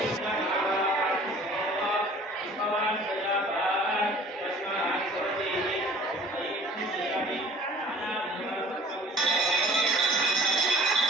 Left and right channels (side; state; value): both; normal; correlation 0.48